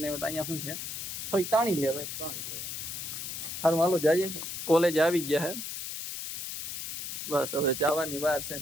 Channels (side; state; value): left; noise; hiss, 6 dB below the sound